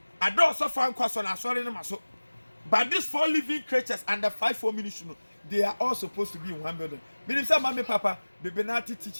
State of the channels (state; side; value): inverted; both; correlation -1.00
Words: ado so fan kwaso na asore ne maso but these 4 living creatures and the 5 ministry they are all supposed to be in one building. Meaning say ma me papa be benati